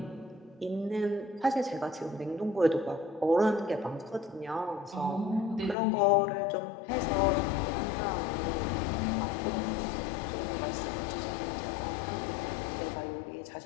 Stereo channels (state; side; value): drops out; right; at 5.8 s